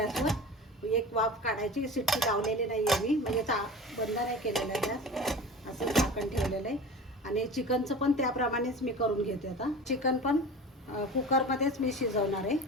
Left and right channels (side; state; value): both; normal; correlation 0.34